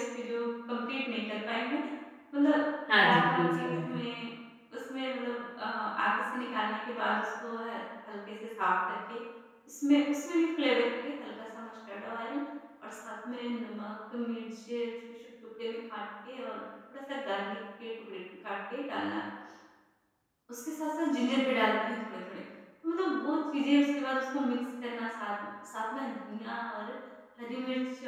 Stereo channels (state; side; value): identical; both; correlation 1.00